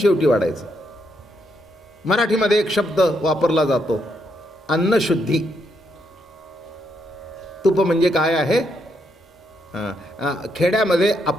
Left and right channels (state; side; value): normal; both; correlation 0.77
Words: वाढायचं. मराठीमध्ये एक शब्द वापरला जातो, अन्नशुद्धी. तूप म्हणजे काय आहे? खेड्यामध्ये